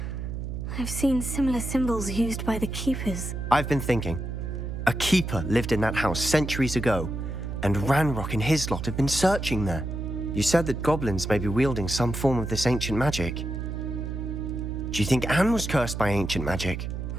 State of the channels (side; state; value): right; noise; hum, 5 dB below the sound